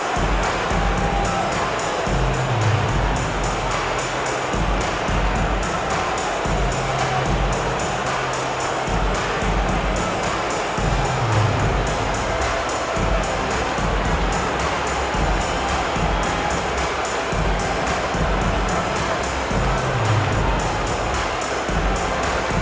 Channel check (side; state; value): both; identical; correlation 1.00